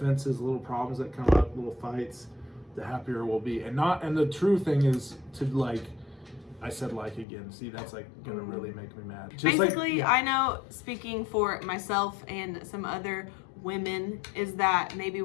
little problems that come up, little fights, the happier we'll be. And the true thing is to like, I said like again. See, that's like gonna really make me mad. Just Basically, like, I know, speaking for myself and some other women, is that maybe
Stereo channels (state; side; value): drops out; right; at 7.2 s